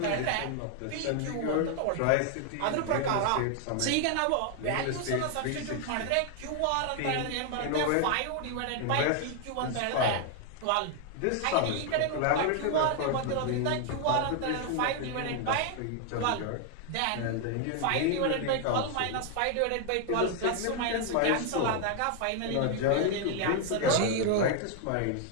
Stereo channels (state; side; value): different; both; correlation 0.00